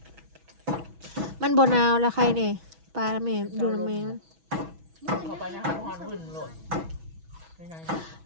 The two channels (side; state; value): left; late; 6.1 ms